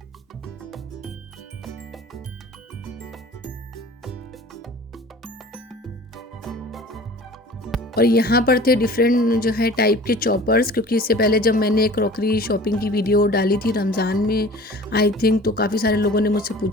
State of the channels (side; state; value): both; normal; correlation 0.43